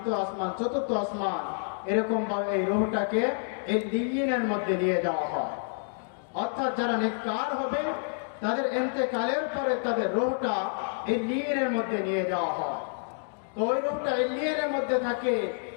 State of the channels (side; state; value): right; silent; digital silence